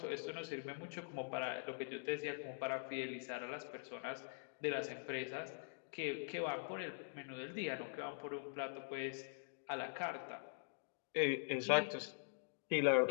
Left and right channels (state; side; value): silent; right; digital silence